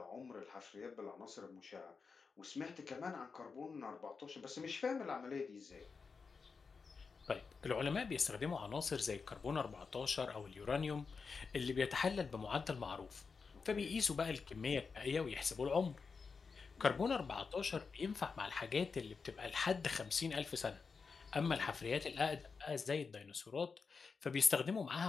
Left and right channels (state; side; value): quieter; right; 5.0 dB